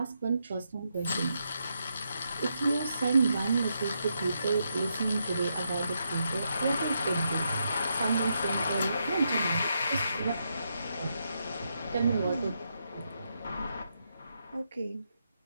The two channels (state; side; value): inverted; both; correlation -0.81